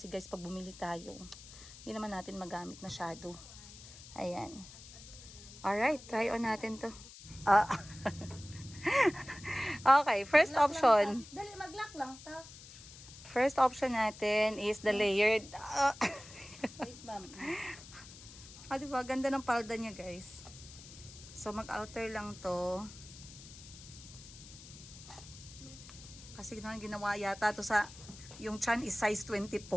guys, pag bumili tayo, hindi naman natin magamit masyado. Ayan. Alright, try on natin to. Okay, first option. Dali, mag-lock lang ta. First option natin is the layered. Wait, ma'am. Diba? Ganda ng palda niya, guys. So, mag-alter lang to. Kasi ginawa yata to sa, yung chan is size 24.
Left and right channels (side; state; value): left; noise; hiss, 17 dB below the sound